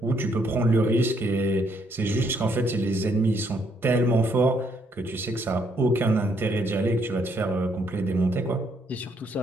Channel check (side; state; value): both; normal; correlation 0.71